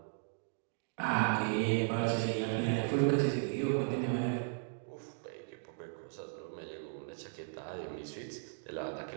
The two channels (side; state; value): left; silent; digital silence